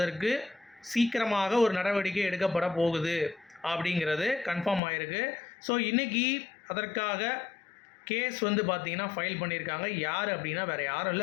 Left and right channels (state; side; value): drops out; right; at 4.8 s